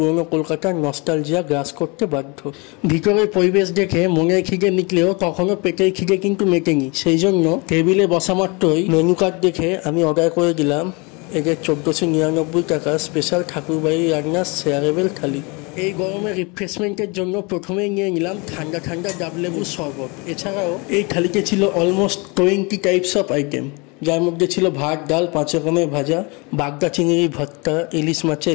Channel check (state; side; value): quieter; right; 28.8 dB